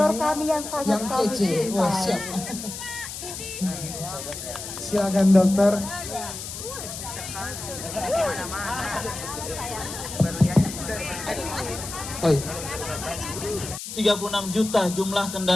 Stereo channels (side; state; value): left; noise; hiss, 9 dB below the sound